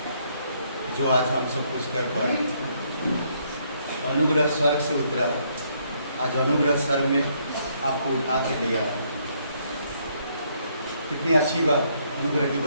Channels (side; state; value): both; inverted; correlation -0.71